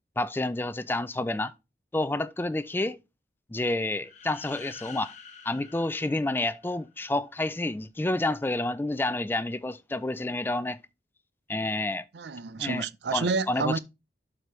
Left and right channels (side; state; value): both; normal; correlation 0.59